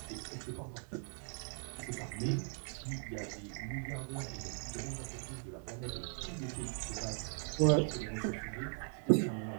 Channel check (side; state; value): left; silent; 51 dB below the other